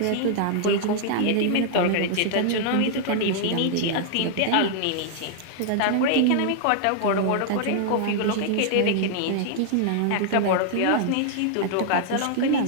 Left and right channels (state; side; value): different; both; correlation -0.01